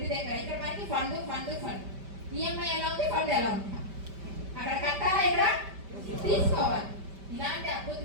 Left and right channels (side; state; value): left; late; 5.1 ms